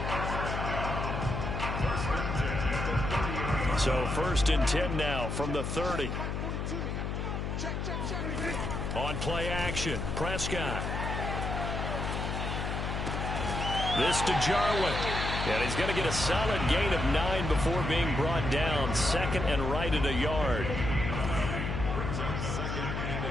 So 1st and 10 now from the 30. On play action, Prescott. This to Jarwin. And he's going to get a solid gain of 9 before being brought down. 2nd and right at a yard.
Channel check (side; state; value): left; noise; hum, 2 dB below the sound